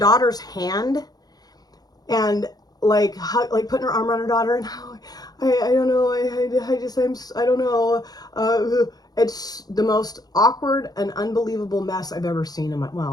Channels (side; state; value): right; late; 0.19 ms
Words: hand and like putting her arm around her daughter, and I don't know, I don't know. It's the most awkward and unbelievable mess I've ever seen in my,